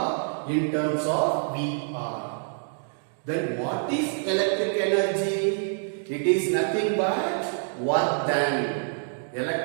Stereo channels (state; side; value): silent; left; digital silence